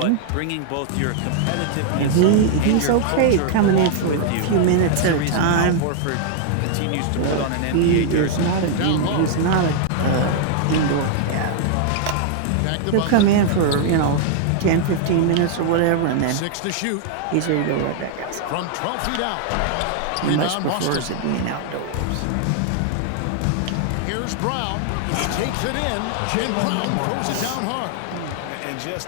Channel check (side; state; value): both; different; correlation 0.00